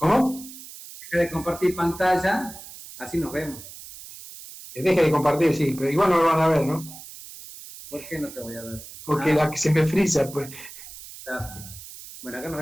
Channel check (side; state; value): right; noise; hiss, 15 dB below the sound